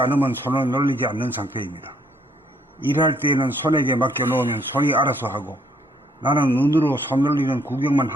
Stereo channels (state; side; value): normal; both; correlation 0.67